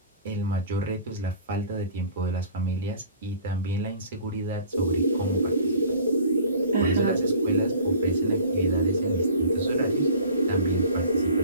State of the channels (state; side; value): inverted; both; correlation -0.47